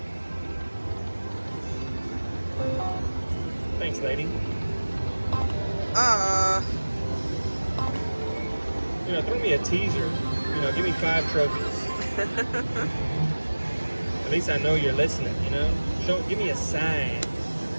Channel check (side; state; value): both; inverted; correlation -1.00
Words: Thanks, lady. You know, throw me a teaser. You know, give me 5 trophies. At least I know you're listening, you know? Give me a sign.